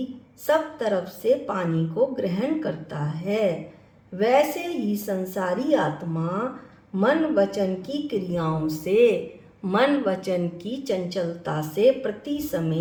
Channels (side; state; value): both; identical; correlation 1.00